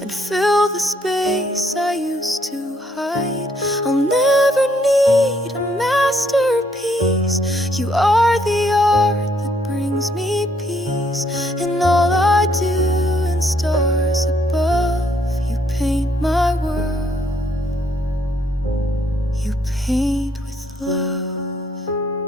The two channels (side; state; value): both; normal; correlation 0.70